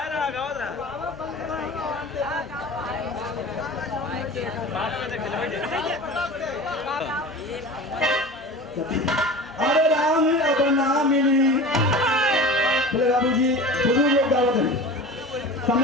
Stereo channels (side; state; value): both; normal; correlation 0.35